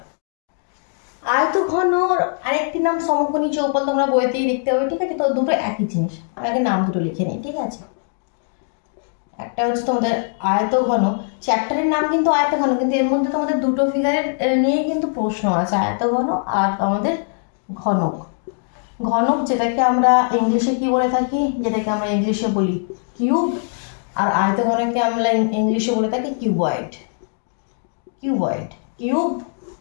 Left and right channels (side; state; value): right; silent; 65 dB below the other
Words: আয়তঘনর আরেকটি নাম সমকোণী চৌপল, তোমরা বইতেই দেখতে পাবে। ঠিক আছে, তো দুটো একই জিনিস। আমি আগে নাম দুটো লিখে নিই। ঠিক আছে, একটা হচ্ছে তোমাদের আয়তঘন, চ্যাপ্টারের নাম কিন্তু আয়তঘন, কিন্তু এর মধ্যে তোমাদের দুটো ফিগারের নিয়ে কিন্তু প্রশ্ন আছে, আয়তঘন আর আমাদের ঘনক। ঘনক যেটাকে আমরা ইংলিশে কি বলে থাকি, যেটাকে আমরা ইংলিশে বলি কিউব, আর আয়তঘনকে আমরা ইংলিশে বলে থাকি কিউবয়েড। কিউবয়েড, কিউব